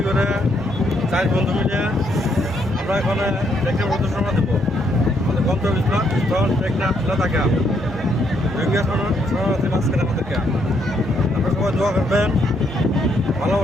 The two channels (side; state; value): both; normal; correlation 0.73